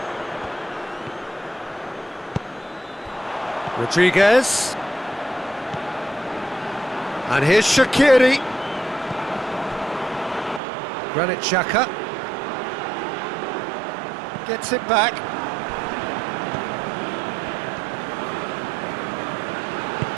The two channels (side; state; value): left; drops out; at 10.6 s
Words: Rodriguez. And here's Shaqiri. Granit Xhaka. Gets it back.